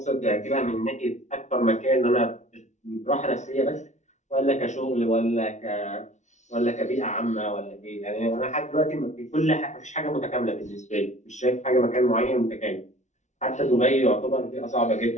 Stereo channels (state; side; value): late; right; 0.34 ms